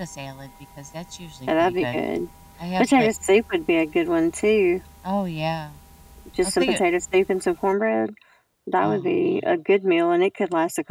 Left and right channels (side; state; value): both; identical; correlation 1.00